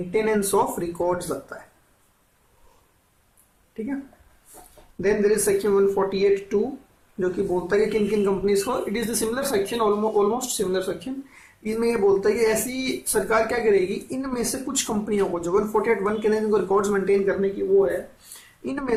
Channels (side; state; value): both; identical; correlation 1.00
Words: ऑफ रिकॉर्ड्स लगता है, ठीक है। देन देयर इज सेक्शन 148(2) जो कि बोलता है कि किन किन कंपनीज को, it is the similar section, almost similar section. इसमें ये बोलता है कि ऐसी सरकार क्या करेगी, इनमें से कुछ कंपनियों को, जो 148(1) के अंदर रिकॉर्ड्स मेंटेन करने की वो है, इनमें